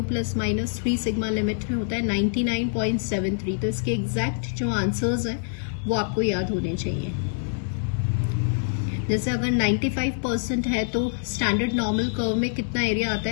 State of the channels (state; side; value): silent; right; digital silence